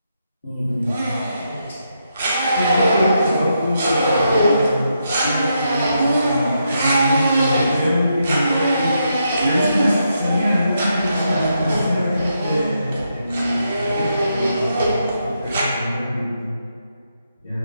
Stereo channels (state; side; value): inverted; both; correlation -0.81